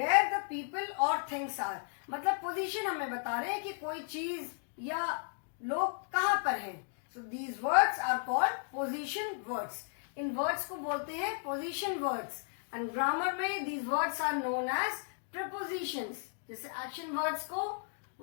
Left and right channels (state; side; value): silent; right; digital silence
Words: the people or things are. मतलब position हमें बता रहे हैं कि कोई चीज या लोग कहाँ पर हैं. So these words are called position words. In words को बोलते हैं पोजीशन वर्ड्स. एंड ग्रामर में these words are known as prepositions. जैसे एक्शन वर्ड्स को